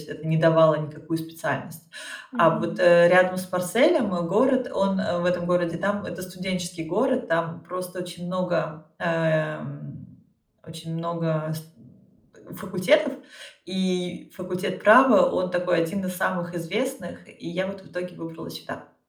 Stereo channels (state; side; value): identical; both; correlation 1.00